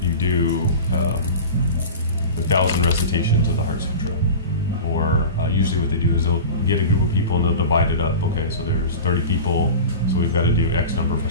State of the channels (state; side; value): inverted; both; correlation -0.32